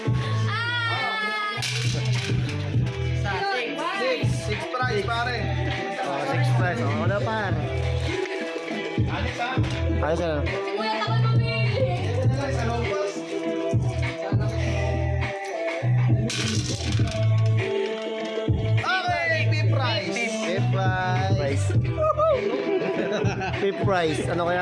Six prize pare. Oh, 6 prize. Oh, wala pa. Ayos na. Okay, fifth prize. Fifth prize. Fifth prize. Ano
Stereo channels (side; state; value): both; identical; correlation 1.00